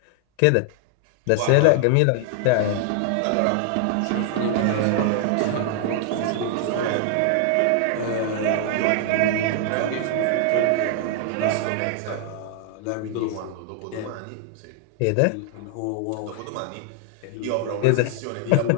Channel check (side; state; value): both; different; correlation 0.00